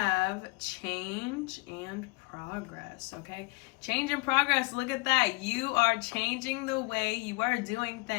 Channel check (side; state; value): right; quieter; 27.6 dB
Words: change and progress. Okay? Change and progress. Look at that. You are changing the way you are doing